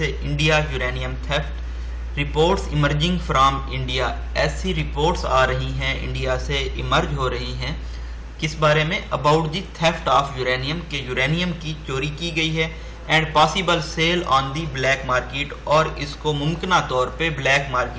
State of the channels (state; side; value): identical; both; correlation 1.00